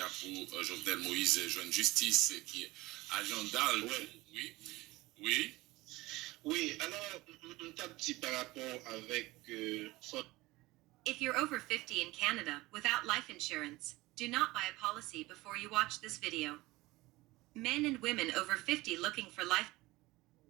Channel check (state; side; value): quieter; left; 20.2 dB